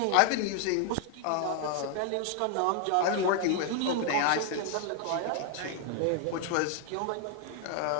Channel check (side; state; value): both; different; correlation 0.00